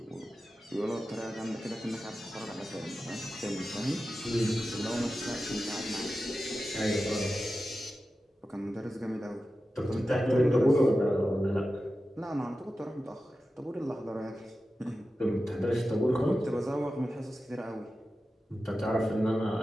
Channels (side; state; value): both; normal; correlation 0.93